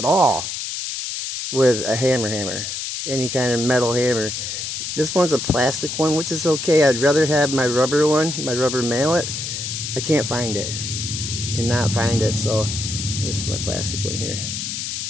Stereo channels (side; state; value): left; noise; hiss, 4 dB below the sound